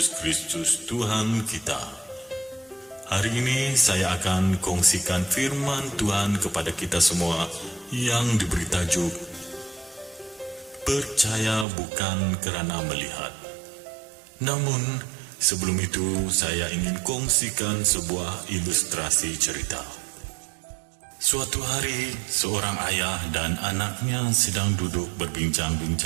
Kristus Tuhan kita. Hari ini saya akan kongsikan firman Tuhan kepada kita semua yang diberi tajuk Percaya bukan kerana melihat. Namun, sebelum itu saya ingin kongsikan sebuah ilustrasi cerita. Suatu hari, seorang ayah dan anaknya sedang duduk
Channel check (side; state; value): left; drops out; at 11.7 s